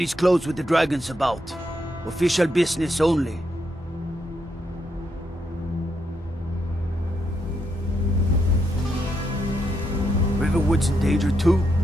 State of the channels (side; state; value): both; normal; correlation 0.80